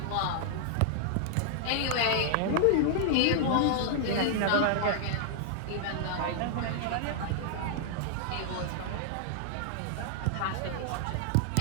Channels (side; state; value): both; different; correlation -0.01